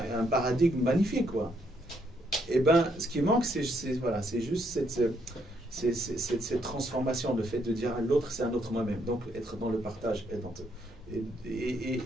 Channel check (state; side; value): normal; both; correlation 0.73